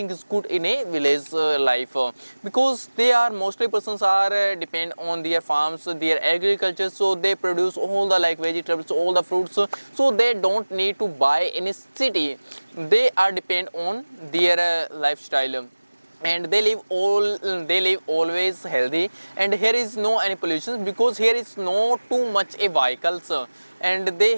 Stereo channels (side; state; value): both; inverted; correlation -1.00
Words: is good in a village life because they are mostly persons are depend on their farms, their agriculture, so they produce all the like vegetables, all the fruits, so they don't need to buy in a city. They are depend on their lifestyle, and they live always healthy, and here is no any pollution because here is no too much a vehicles, and they